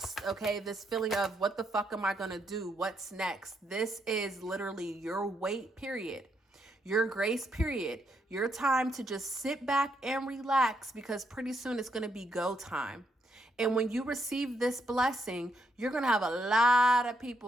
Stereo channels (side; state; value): both; normal; correlation 0.77